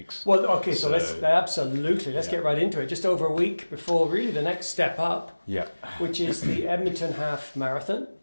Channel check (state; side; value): inverted; both; correlation -1.00